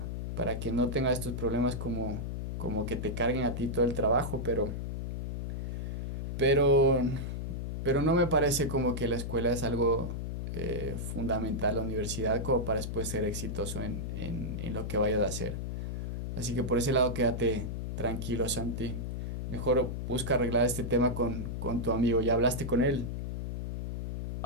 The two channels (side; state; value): left; noise; hum, 4 dB below the sound